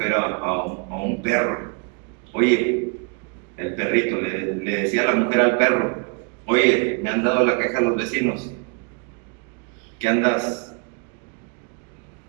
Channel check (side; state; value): left; quieter; 36.8 dB